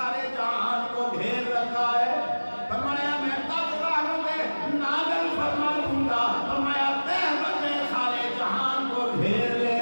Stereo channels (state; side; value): inverted; both; correlation -1.00